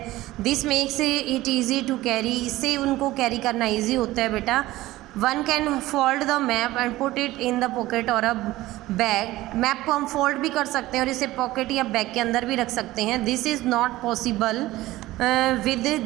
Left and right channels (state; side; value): quieter; left; 17.2 dB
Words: This makes it easy to carry. इससे उनको कैरी करना ईजी होता है बेटा. One can fold the map and put it in the pocket और अ बैग. मैप को हम फोल्ड भी कर सकते हैं और इसे पॉकेट या बैग के अंदर भी रख सकते हैं. This is not possible with